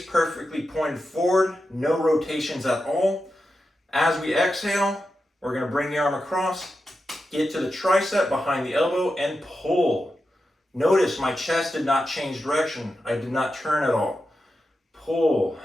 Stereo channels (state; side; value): normal; both; correlation 0.89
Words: perfectly pointed forward, no rotations at all. As we exhale, we're going to bring the arm across, get to the tricep behind the elbow, and pull. Notice my chest did not change direction. I did not turn at all. Pull